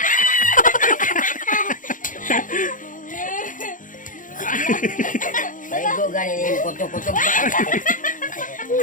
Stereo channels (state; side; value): late; right; 0.38 ms